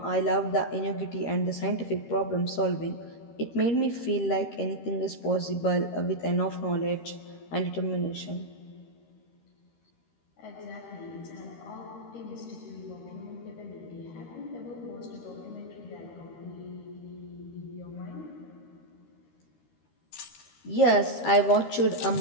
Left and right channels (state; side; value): late; right; 13 ms